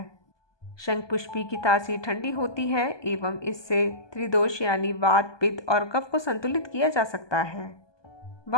शंखपुष्पी की तासीर ठंडी होती है एवं इससे त्रिदोष यानी वात, पित्त और कफ को संतुलित किया जा सकता है।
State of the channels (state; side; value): late; right; 1.2 ms